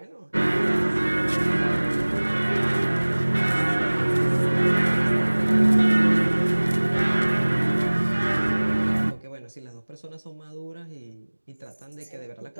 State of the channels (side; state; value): both; inverted; correlation -1.00